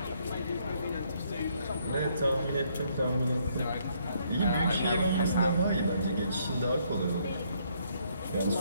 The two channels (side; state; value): both; inverted; correlation -0.70